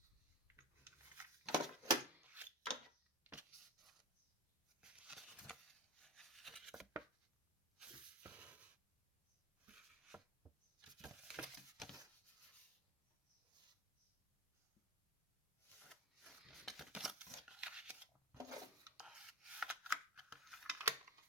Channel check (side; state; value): both; normal; correlation 0.22